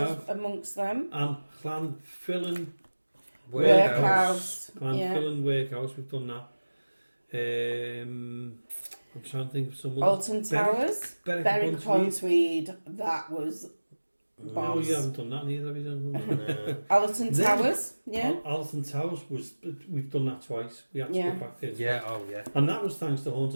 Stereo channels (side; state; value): both; inverted; correlation -1.00